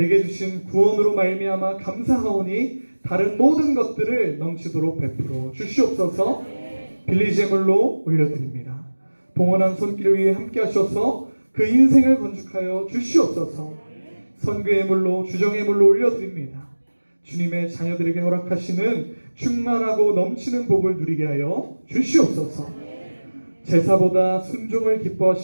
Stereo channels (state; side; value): inverted; both; correlation -1.00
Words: 주신 구원으로 말미암아 감사하오니 다른 모든 것들을 넘치도록 베풀어 주시옵소서. 빌리지 예물로 올려드립니다. 봉헌한 손길 위에 함께 하셔서 그 인생을 건축하여 주시옵소서. 선교 예물로 주정 예물로 올려드립니다. 주님의 자녀들에게 허락하시는 충만하고 넘치는 복을 누리게 하여 주시옵소서. 제사보다 순종을